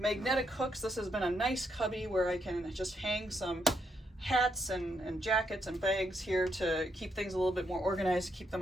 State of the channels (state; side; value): normal; both; correlation 0.77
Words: hooks. This has been a nice cubby where I can just hang some hats and jackets and bags here to keep things a little bit more organized, keep them